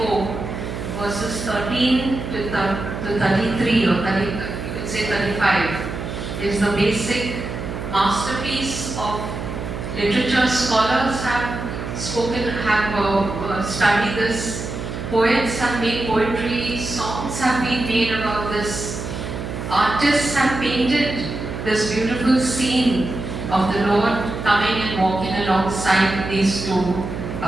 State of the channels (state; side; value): noise; right; hum, 6 dB below the sound